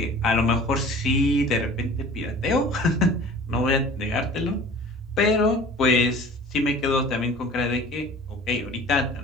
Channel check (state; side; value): normal; both; correlation 0.44